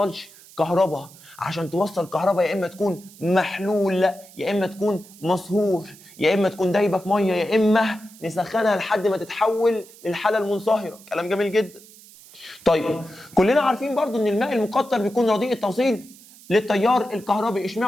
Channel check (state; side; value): noise; right; hiss, 22 dB below the sound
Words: كهرباء. عشان توصل كهرباء يا اما تكون محلول، يا اما تكون مصهور، يا اما تكون دايبه في ميه، يا اما نسخنها لحد ما تتحول للحاله المنصهره. كلام جميل جدا. طيب كلنا عارفين برضو ان الماء المقطر بيكون رديء التوصيل للتيار الكهربي.